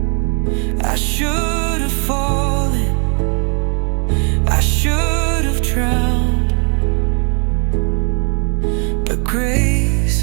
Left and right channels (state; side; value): quieter; left; 39.9 dB